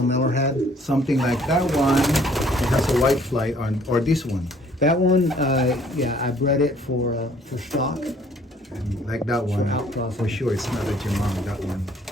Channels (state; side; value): normal; both; correlation 0.59